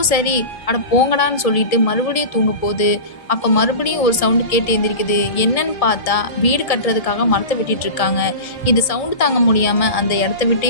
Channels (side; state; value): right; late; 1.7 ms